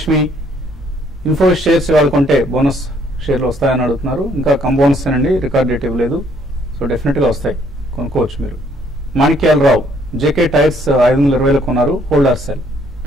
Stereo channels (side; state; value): both; normal; correlation 0.65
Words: Info shares ఇవాళ కొంటే బోనస్ షేర్లు వస్తాయని అడుగుతున్నారు. ఇంకా కంబోనస్ అండి, రికార్డ్ డేట్ ఇవ్వలేదు. సో డెఫినెట్ గా వస్తాయి, కొనుక్కోవచ్చు మీరు. మాణిక్యాల రావు జేకే టైర్స్ 520 కొన్నారు, హోల్డ్ ఆర్ సెల్?